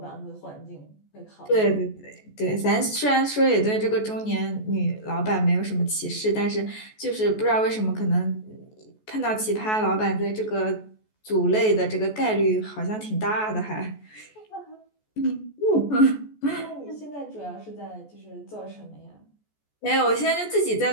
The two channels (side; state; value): right; late; 14 ms